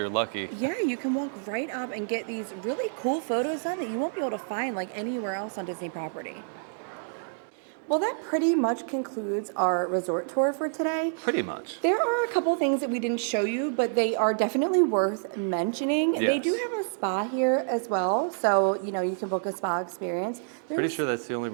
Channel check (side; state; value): left; silent; digital silence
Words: lucky. Yeah, you can walk right up and get these really cool photos done that you won't be able to find like anywhere else on Disney property. Well, that pretty much concludes our resort tour for today. Pretty much. There are a couple things that we didn't show you, but they are definitely worth mentioning. Yes. They do have a spa here as well, so you know you can book a spa experience. Pretty sure that's the only